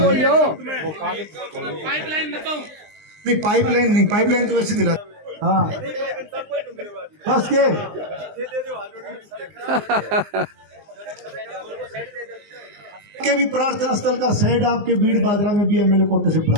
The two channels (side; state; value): left; late; 19 ms